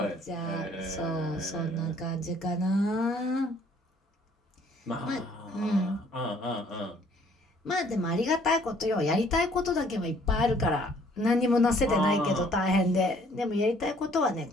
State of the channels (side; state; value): both; normal; correlation 0.60